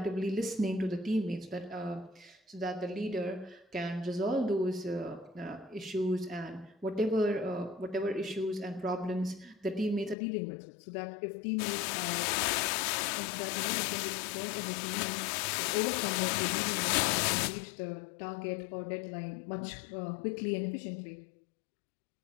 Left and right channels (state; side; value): drops out; right; at 10.2 s